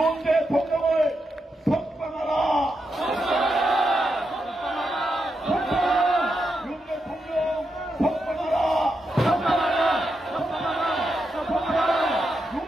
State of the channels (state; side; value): normal; both; correlation 0.85